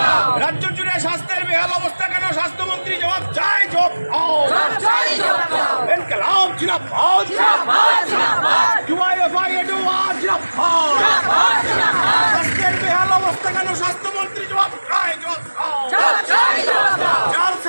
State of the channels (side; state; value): both; inverted; correlation -1.00